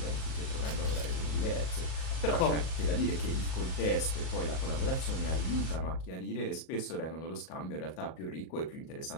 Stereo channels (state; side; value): late; right; 38 ms